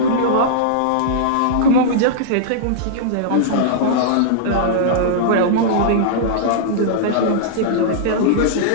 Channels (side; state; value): both; different; correlation -0.02